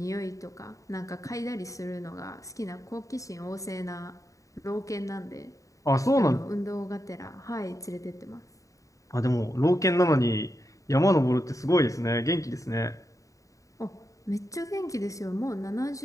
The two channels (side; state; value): right; late; 0.16 ms